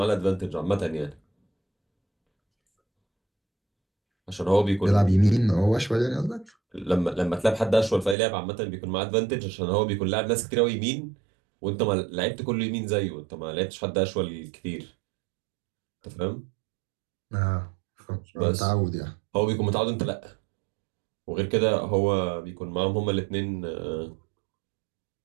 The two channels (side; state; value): left; drops out; at 8.2 s